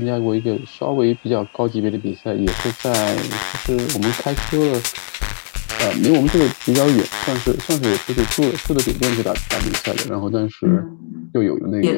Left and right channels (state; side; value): silent; right; 67 dB below the other